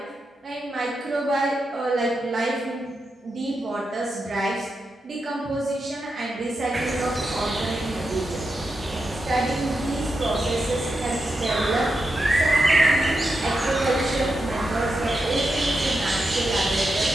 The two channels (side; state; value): both; normal; correlation 0.87